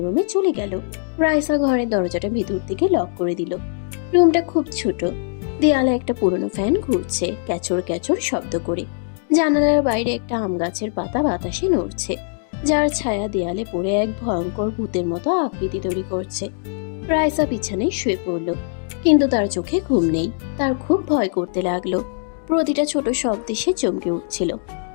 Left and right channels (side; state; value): right; silent; digital silence